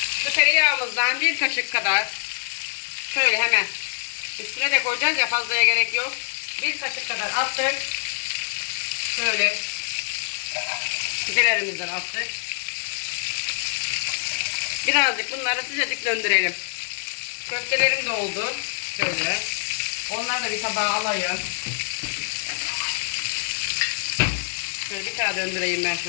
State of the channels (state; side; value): silent; right; 62 dB below the other